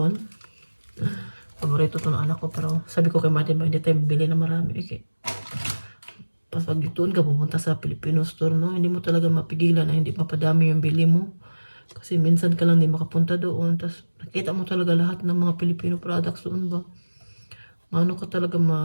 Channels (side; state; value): both; inverted; correlation -1.00